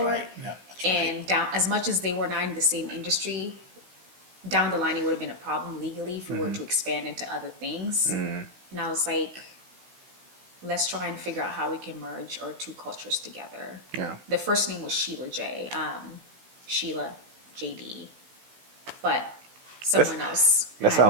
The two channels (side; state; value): left; late; 16 ms